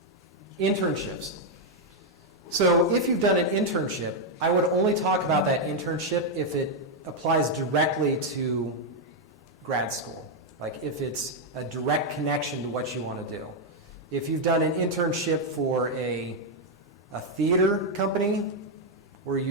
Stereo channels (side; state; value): both; normal; correlation 0.00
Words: Internships. So if you've done an internship, I would only talk about that internship if it applies directly to grad school, like if it's a direct connection to what you want to do. If you've done an internship for a theater company where